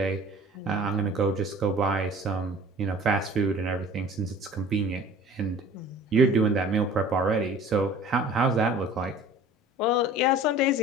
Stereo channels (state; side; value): normal; both; correlation 0.46